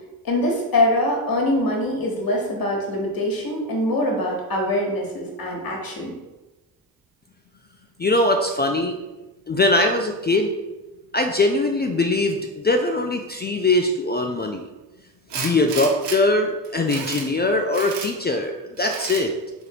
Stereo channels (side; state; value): both; normal; correlation 0.16